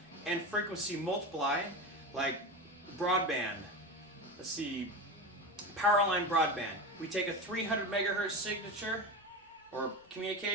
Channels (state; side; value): normal; both; correlation 0.23